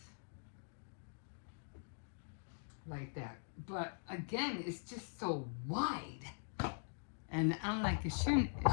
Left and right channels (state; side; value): silent; right; digital silence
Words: Like that. But again, it's just so wide. And I'm like, it shouldn't